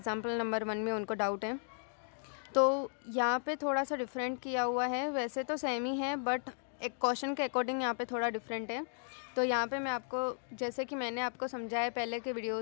नंबर 1 में उनको डाउट है, तो यहाँ पे थोड़ा सा डिफरेंट किया हुआ है। वैसे तो सेम ही है बट एक क्वेश्चन के अकॉर्डिंग यहाँ पे थोड़ा डिफरेंट है। तो यहाँ पे मैं आपको, जैसे कि मैंने आपको समझाया पहले के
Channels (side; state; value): right; silent; digital silence